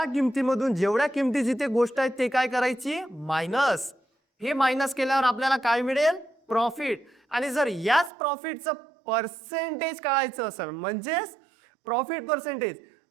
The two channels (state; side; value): drops out; left; at 8.1 s